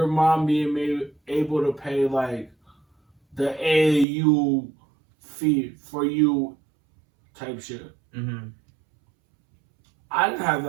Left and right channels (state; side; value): drops out; left; at 4.0 s